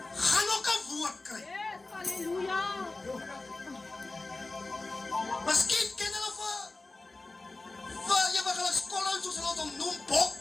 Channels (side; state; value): right; quieter; 3.3 dB